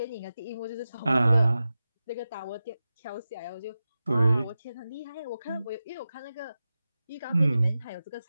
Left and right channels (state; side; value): inverted; both; correlation -0.94